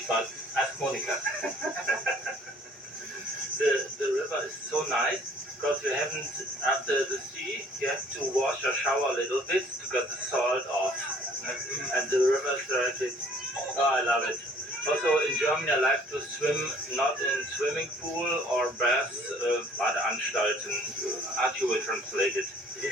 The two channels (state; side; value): normal; both; correlation 0.56